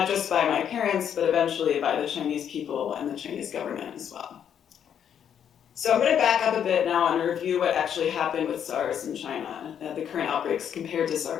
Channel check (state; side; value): quieter; right; 8.8 dB